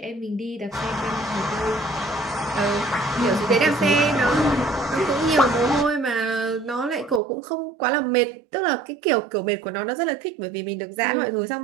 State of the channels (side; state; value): left; drops out; at 7.2 s